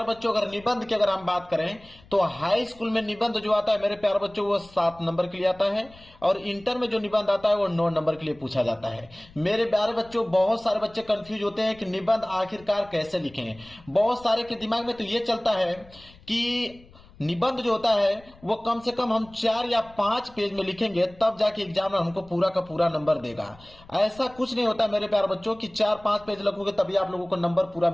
बच्चों, अगर निबंध की अगर हम बात करें तो हाई स्कूल में निबंध जो आता है मेरे प्यार बच्चों वो 7 नंबर के लिए आता है और इंटर में जो निबंध आता है वो 9 नंबर के लिए पूछा जाता है। मेरे प्यारे बच्चों, बहुत सारे बच्चे कंफ्यूज होते हैं कि निबंध आखिरकार कैसे लिखें। बहुत सारे के दिमाग में तो ये चलता है कि निबंध जो होता है वो कम से कम हम 4 या 5 पेज में लिखेंगे तब जाके एग्जामिनर हमको पूरा का पूरा नंबर देगा। ऐसा कुछ नहीं होता मेरे प्यारे बच्चों कि 4-5 पेज लिखोगे तभी आप लोगों को नंबर पूरा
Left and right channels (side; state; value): left; noise; rumble, 24 dB below the sound